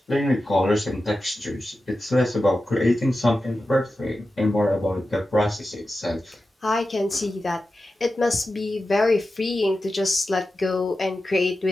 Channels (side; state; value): both; normal; correlation 0.92